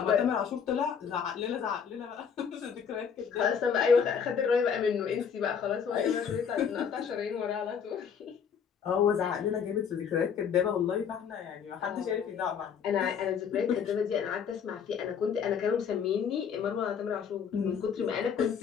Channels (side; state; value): right; quieter; 7.1 dB